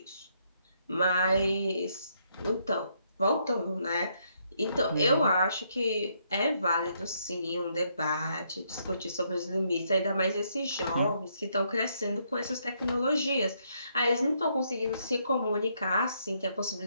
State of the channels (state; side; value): inverted; both; correlation -0.74